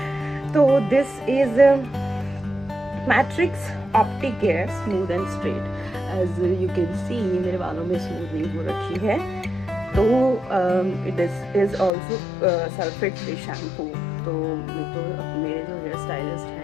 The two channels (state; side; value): drops out; right; at 11.9 s